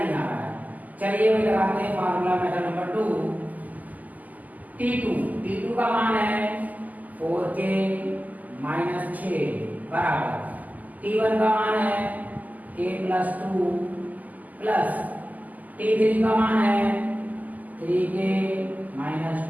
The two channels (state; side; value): late; left; 0.080 ms